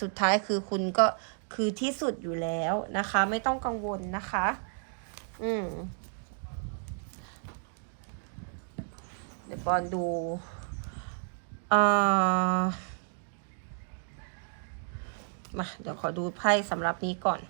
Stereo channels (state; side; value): silent; left; 57 dB below the other